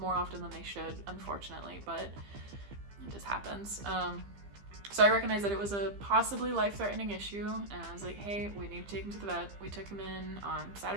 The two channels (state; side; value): late; left; 15 ms